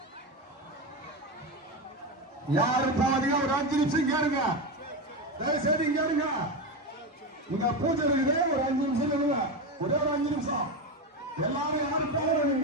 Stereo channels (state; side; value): normal; both; correlation 0.16